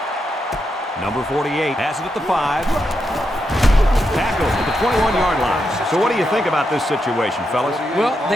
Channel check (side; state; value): both; normal; correlation 0.84